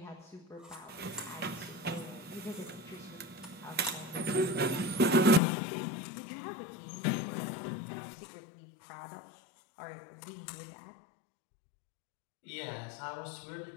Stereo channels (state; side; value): drops out; right; at 5.4 s